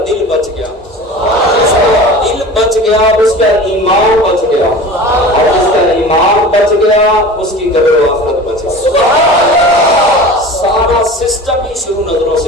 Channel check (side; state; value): both; normal; correlation 0.37